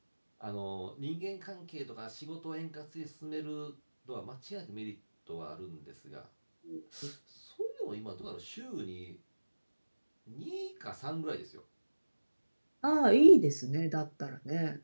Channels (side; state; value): both; inverted; correlation -1.00